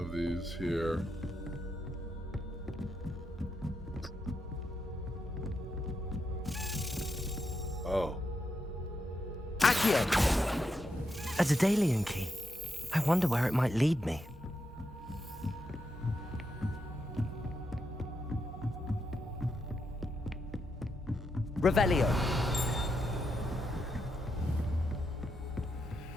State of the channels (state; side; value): normal; both; correlation 0.83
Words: these here. Oh. Accio! A Daedalian key. I wonder where it might lead me. Revelio.